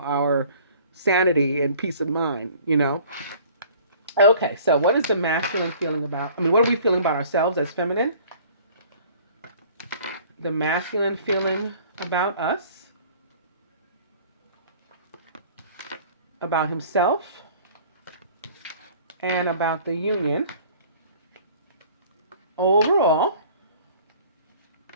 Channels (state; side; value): inverted; both; correlation -0.50